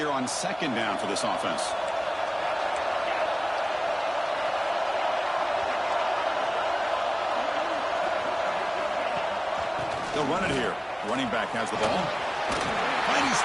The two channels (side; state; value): both; identical; correlation 1.00